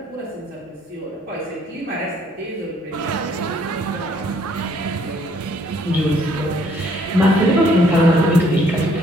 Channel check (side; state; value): both; normal; correlation 0.64